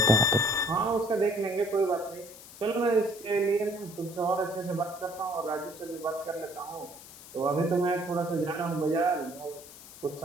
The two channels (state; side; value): noise; left; hiss, 17 dB below the sound